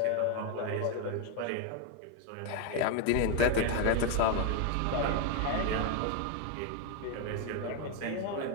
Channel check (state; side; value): different; both; correlation 0.01